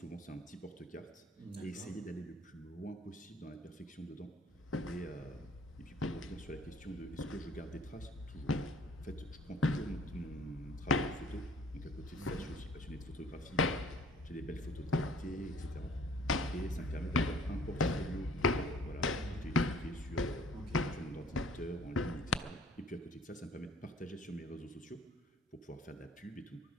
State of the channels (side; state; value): both; normal; correlation 0.53